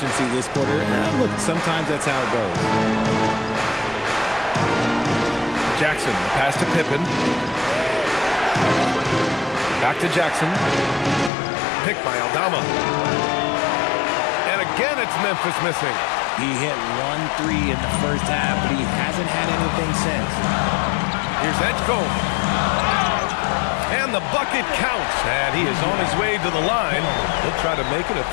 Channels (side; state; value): right; drops out; at 11.3 s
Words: this quarter. Look, sometimes that's how it goes. Jackson, pass to Pippen. Back to Jackson. Picked by Aldama. And again, it's Memphis missing. He hit 1 3 in the first half, but he hasn't had anything since. Here's Edgecombe. And the bucket counts. And he is on his way to the line. He'll try to make it a